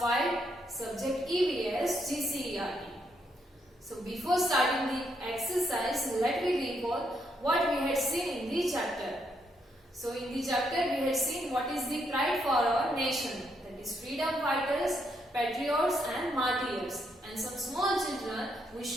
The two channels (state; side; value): normal; both; correlation 0.76